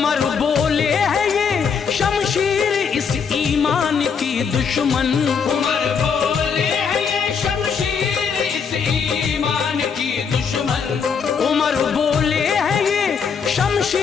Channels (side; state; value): right; quieter; 6.3 dB